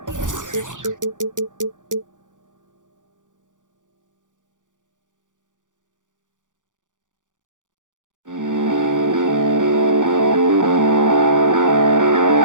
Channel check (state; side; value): late; left; 0.87 ms